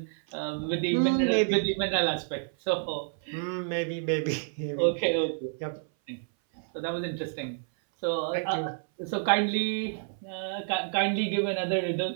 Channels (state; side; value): silent; left; 59 dB below the other